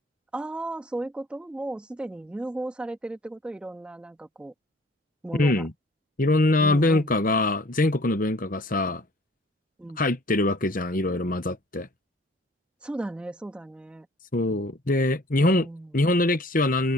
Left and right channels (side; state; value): both; normal; correlation 0.53